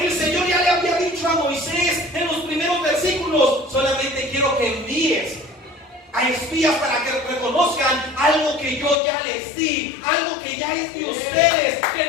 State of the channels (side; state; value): right; drops out; at 9.0 s